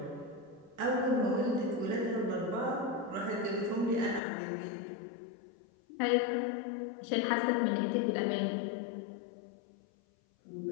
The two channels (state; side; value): drops out; right; at 4.2 s